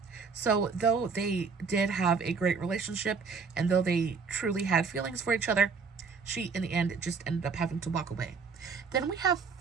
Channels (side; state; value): left; quieter; 5.2 dB